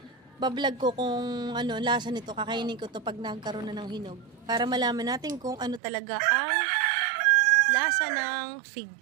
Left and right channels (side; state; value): left; drops out; at 5.8 s